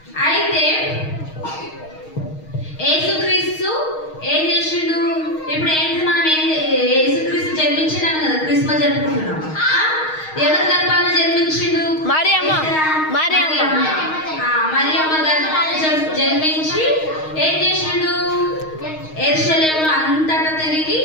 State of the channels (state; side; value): late; right; 6.4 ms